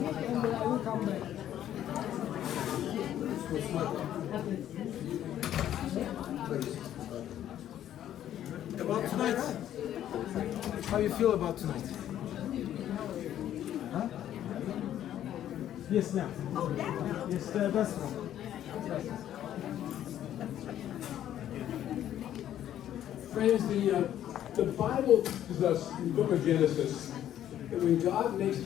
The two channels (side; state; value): right; quieter; 11.4 dB